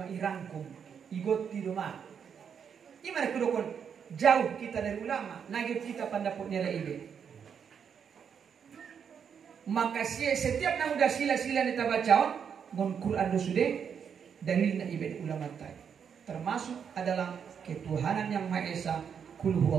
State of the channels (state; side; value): quieter; left; 7.3 dB